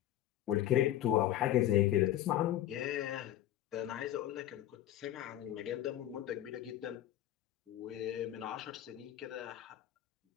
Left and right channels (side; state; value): right; quieter; 12.8 dB